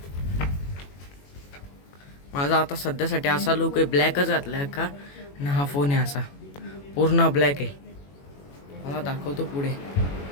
माझा आता सध्यासाठी असा लुक आहे। ब्लॅकच घातलाय का ना, हा फोन आहे असा पूर्ण ब्लॅक आहे। मला दाखवतो पुढे।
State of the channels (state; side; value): late; right; 21 ms